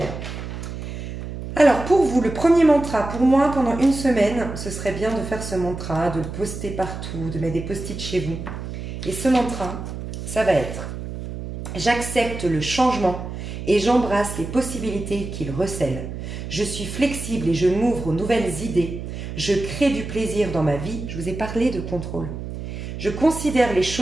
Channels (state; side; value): noise; right; hum, 8 dB below the sound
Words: Alors, pour vous, le premier mantra, pour moi, pendant une semaine, ce serait bien de faire ce mantra, de le poster partout, de mettre des post-it chez vous. Et ce mantra, ça va être « J'accepte le changement et j'embrasse les possibilités qu'il recèle. Je suis flexible et je m'ouvre aux nouvelles idées. Je crée du plaisir dans ma vie. Je vous ai parlé de contrôle. Je considère les